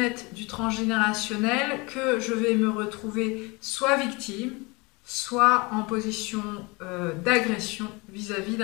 du transgénérationnel, que je vais me retrouver soit victime, soit en position d'agression vis-à-vis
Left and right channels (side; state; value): right; quieter; 26.5 dB